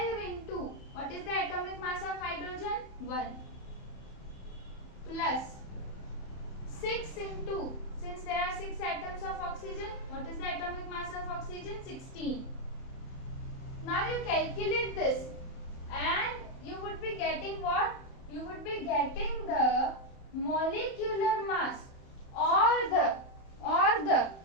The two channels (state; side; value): late; right; 31 ms